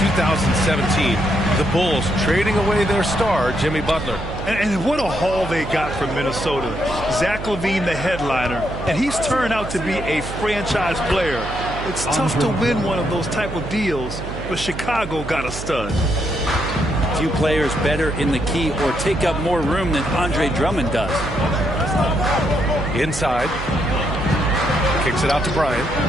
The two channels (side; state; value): right; noise; hum, 9 dB below the sound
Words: the Bulls trading away their star, Jimmy Butler. And what a haul they got from Minnesota. Zach LaVine, the headliner, and he's turned out to be a franchise player. It's tough to win one of those type of deals, but Chicago got a stud. Few players better in the key or take up more room than Andre Drummond does. Inside. Kicks it out to Bryant.